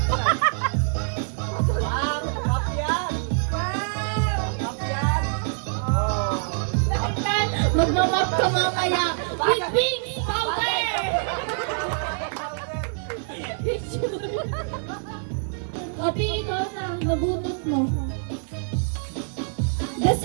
Magmamap ka mamaya with pink powder! Picture. Opi, ikaw na. Nabunot mo.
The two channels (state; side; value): silent; left; 57 dB below the other